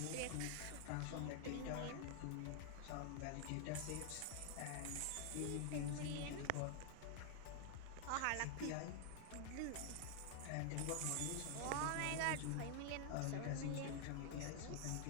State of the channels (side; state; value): both; different; correlation 0.00